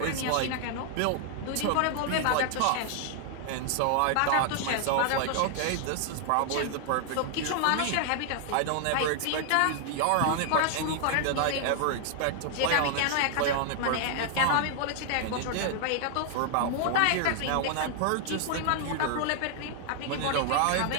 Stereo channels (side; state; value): both; different; correlation 0.00